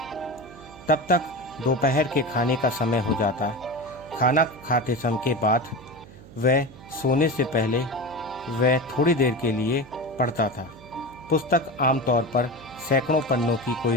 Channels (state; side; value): noise; right; hum, 20 dB below the sound